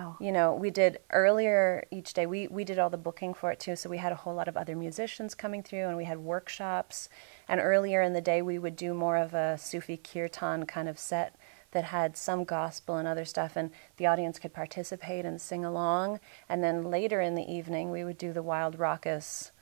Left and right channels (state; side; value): silent; left; 56 dB below the other